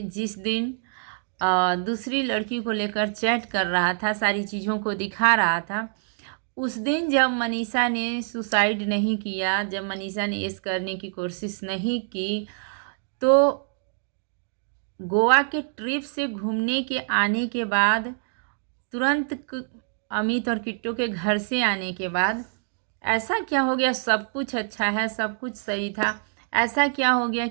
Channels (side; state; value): left; silent; digital silence